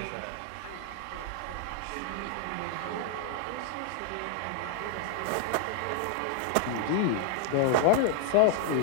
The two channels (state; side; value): different; both; correlation 0.00